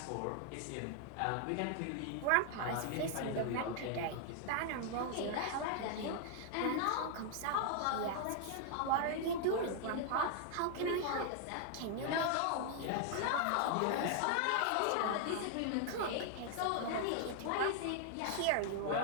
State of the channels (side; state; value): both; different; correlation 0.00